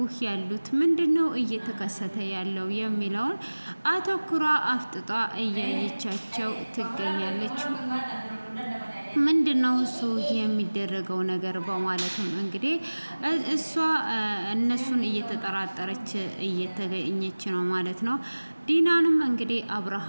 ያሉት? ምንድነው እየተከሰተ ያለው የሚለውን አተኩራ አፍጥጧ እያየቻቸው ትገኛለች። ምንድነው እሱ የሚደረገው ነገር በማለትም እንግዲህ እሷ እነሱን እየተጠራጠረች እየተገኘች ነው ማለት ነው። ዲናንም እንግዲህ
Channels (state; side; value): inverted; both; correlation -1.00